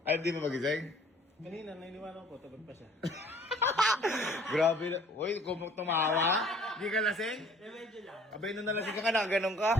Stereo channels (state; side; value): normal; both; correlation 0.54